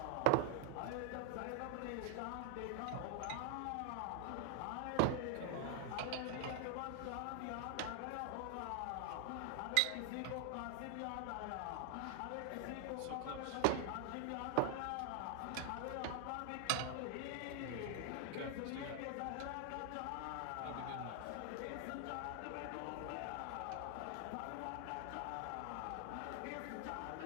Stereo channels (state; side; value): different; both; correlation 0.00